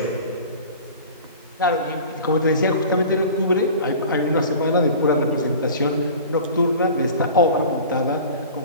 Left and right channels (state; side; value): inverted; both; correlation -0.39